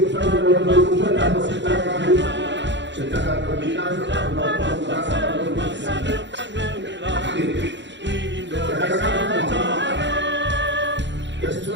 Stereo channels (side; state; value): left; late; 0.52 ms